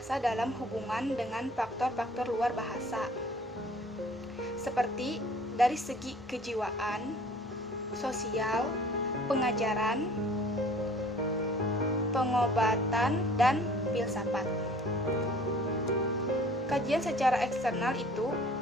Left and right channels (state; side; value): normal; both; correlation 0.51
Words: dalam hubungan dengan faktor-faktor luar bahasa, seperti dari segi kejiwaan, sosial, pengajaran, pengobatan, dan filsafat. Kajian secara eksternal itu